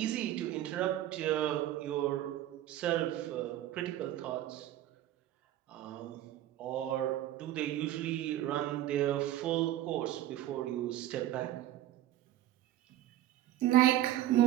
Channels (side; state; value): left; quieter; 13.4 dB